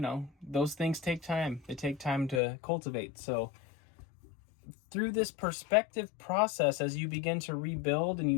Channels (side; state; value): right; drops out; at 2.4 s